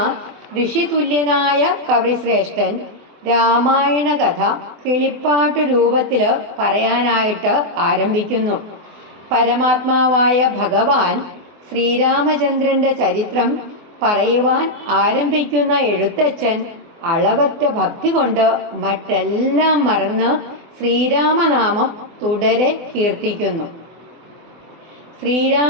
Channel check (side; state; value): left; late; 24 ms